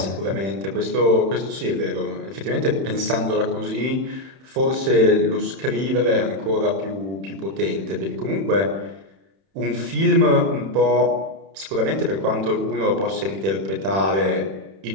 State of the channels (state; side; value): late; left; 31 ms